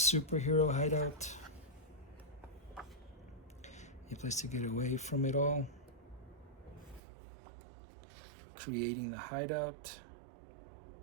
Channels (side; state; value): left; drops out; at 7.0 s